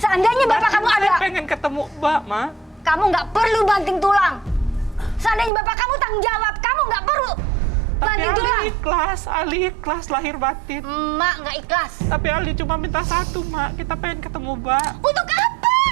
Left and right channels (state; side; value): drops out; left; at 5.5 s